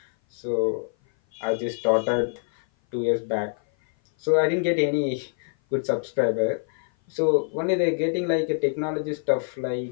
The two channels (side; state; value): right; silent; 56 dB below the other